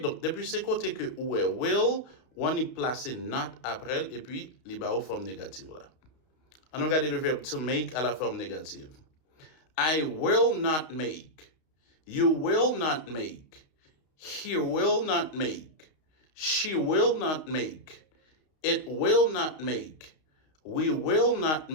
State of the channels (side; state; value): right; late; 32 ms